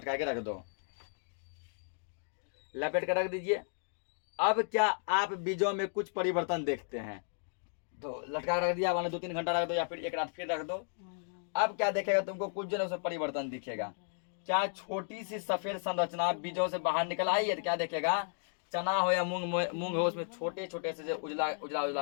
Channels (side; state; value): right; silent; digital silence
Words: के रख दो। लपेट कर रख दीजिए। अब क्या आप बीजों में कुछ परिवर्तन देखते हैं? तो लटका रख दिया, मानो 2-3 घंटा रख दो या फिर एक रात फिर रख दो। अब क्या देखेगा तुमको? कुछ जो है उसमें परिवर्तन दिखेगा। क्या छोटी सी सफेद संरचना बीजों से बाहर निकल आई है? तो क्या देखेगा? चना हो या मूंग हो, उसमें छोटे छोटे से जो उजला उजला